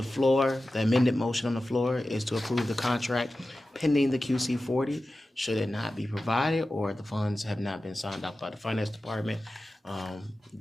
floor, the amended motion on the floor is to approve the contract pending the QC40. Should it not be provided or the funds have not been signed off by the finance department,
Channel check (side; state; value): both; normal; correlation 0.94